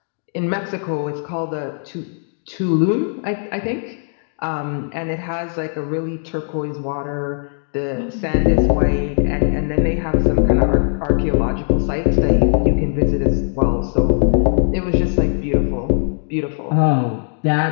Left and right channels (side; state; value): right; silent; 66 dB below the other